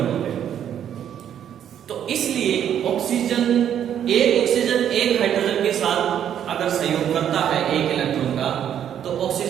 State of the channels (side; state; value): left; quieter; 9.6 dB